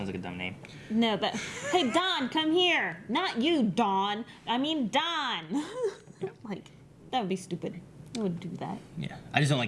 like a dumb name. No, but hey, Don, come here. Not you, Dawn. I mean Don. Like, that would be stupid. I wouldn't do that. Yeah. I just don't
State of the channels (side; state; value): both; identical; correlation 1.00